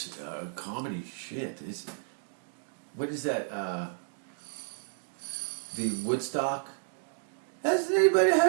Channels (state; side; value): silent; left; digital silence